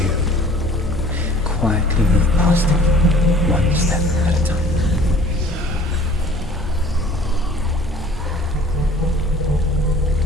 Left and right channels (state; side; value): normal; both; correlation 0.50